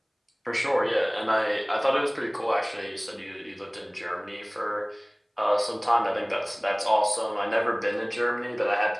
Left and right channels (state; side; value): identical; both; correlation 1.00